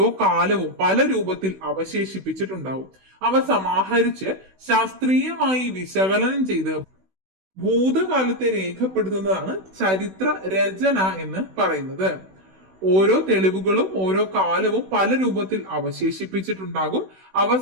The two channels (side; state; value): left; late; 16 ms